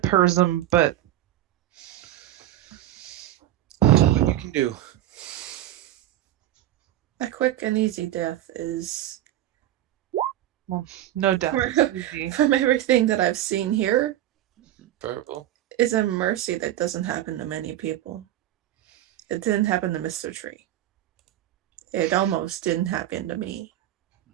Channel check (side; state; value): left; quieter; 13.3 dB